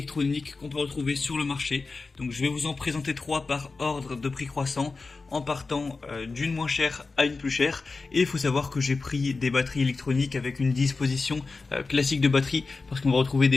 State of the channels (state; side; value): quieter; right; 4.0 dB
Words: qu'on peut retrouver sur le marché. Donc je vais vous en présenter 3 par ordre de prix croissant, en partant d'une moins chère à une plus chère. Et il faut savoir que j'ai pris des batteries électroniques avec une disposition classique de batterie, parce qu'on va retrouver